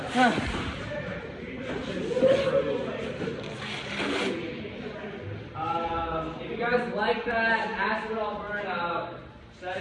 If you guys like that, ask it all burn out. Set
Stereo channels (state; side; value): identical; both; correlation 1.00